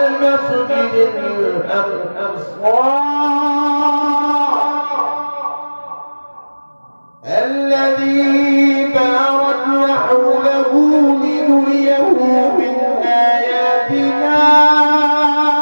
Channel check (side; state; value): both; inverted; correlation -1.00